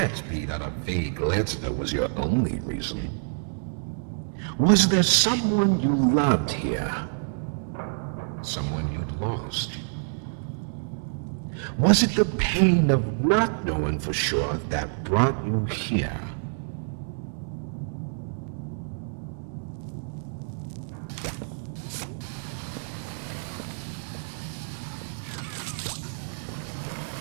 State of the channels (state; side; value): silent; left; digital silence